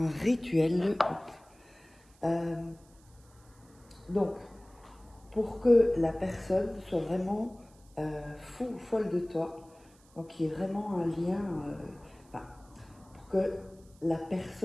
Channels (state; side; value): noise; right; hiss, 29 dB below the sound